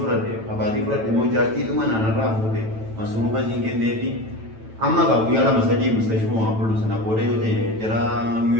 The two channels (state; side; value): late; left; 9.1 ms